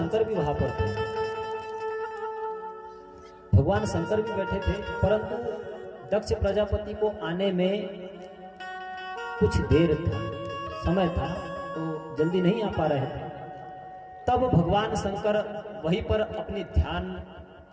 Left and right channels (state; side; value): identical; both; correlation 1.00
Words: भी वहां पर थे। भगवान शंकर भी बैठे थे, परंतु दक्ष प्रजापति को आने में कुछ देर था, समय था, तो जल्दी नहीं आ पा रहे थे। तब भगवान शंकर वहीं पर अपनी ध्यान